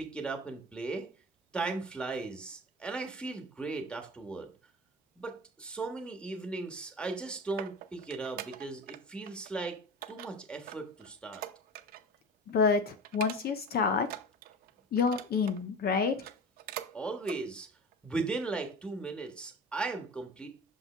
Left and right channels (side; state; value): both; normal; correlation 0.32